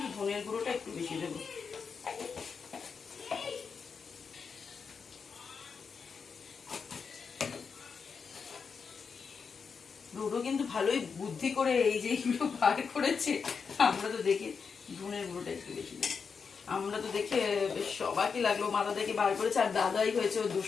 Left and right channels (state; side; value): quieter; right; 5.7 dB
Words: ধনের গুঁড়োটা একটু বেশি দেবো। ডোডো কিন্তু ভালোই বুদ্ধি করে এই যে এগুলো বার করেছে, আমরা তো দেখে ধনের গুঁড়োটা একটু বেশি দেবো। আমরা তো দেখে বেশ সবাইকে লাগলো, মাথা থেকে বার করেছে, আর দাদাই হয়েছে ও